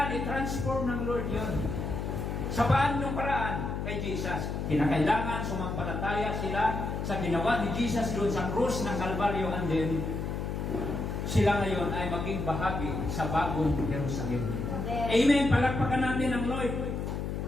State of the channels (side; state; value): left; noise; hum, 3 dB below the sound